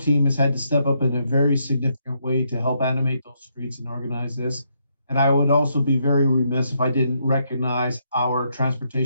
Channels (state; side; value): inverted; both; correlation -0.76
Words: has had to step up in a very significant way to help animate those streets and organize this. And I would also be very remiss if I didn't recognize our